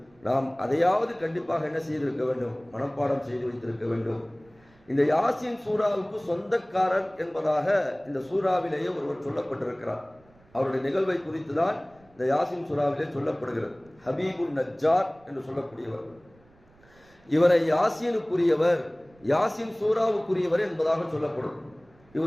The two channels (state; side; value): noise; right; rumble, 30 dB below the sound